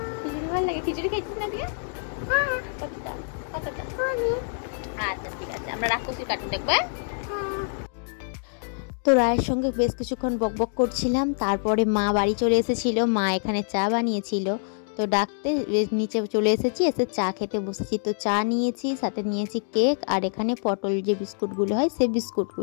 খিচুড়ি ভালো লাগে? খিচুড়ি খেয়েছিস না দিয়ে? কতটা? আচ্ছা ঠিক আছে, আমরা রাক্ষসীর কার্টুন দেখবো। তো রায়ের সঙ্গে বেশ কিছুক্ষণ বকবক করছিলাম, তারপরে মা বাড়ি চলে এসেছিল, মা এখানে চা বানিয়েছিল, তো ডাকতে নিচে চলে এসেছি, এসে চা খেতে বসেছি। তো চা নিয়েছি, সাথে নিয়েছি কেক, আর এখানে পটল যে বিস্কুটগুলো হয় সেই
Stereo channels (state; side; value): silent; right; digital silence